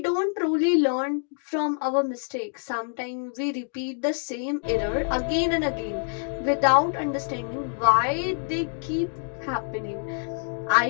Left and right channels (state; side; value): silent; right; 56 dB below the other